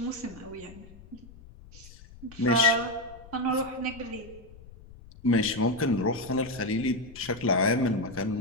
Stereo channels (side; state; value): left; noise; rumble, 20 dB below the sound